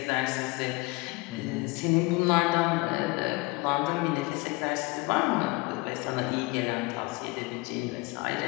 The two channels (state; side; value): quieter; right; 24.9 dB